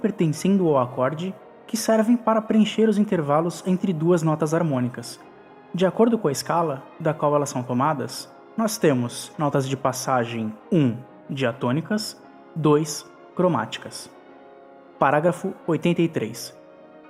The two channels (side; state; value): both; identical; correlation 1.00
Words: ao acorde que servem para preencher os intervalos entre duas notas harmônicas. De acordo com a escala da qual elas são tomadas, nós temos notas de passagem 1 diatônicas, 2 cromáticas. Parágrafo 83.